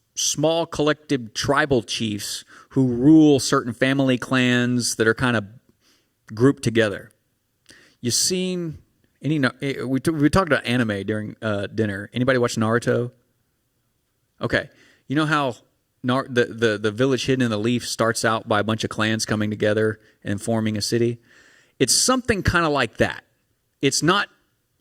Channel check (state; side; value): identical; both; correlation 1.00